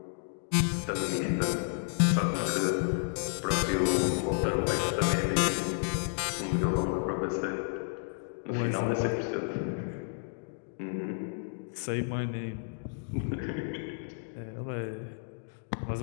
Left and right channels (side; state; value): right; silent; digital silence